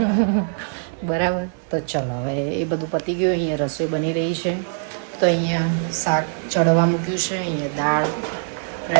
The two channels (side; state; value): left; silent; digital silence